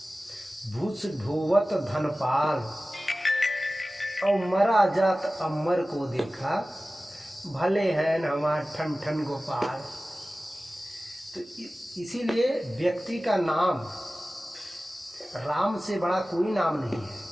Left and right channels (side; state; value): both; normal; correlation 0.96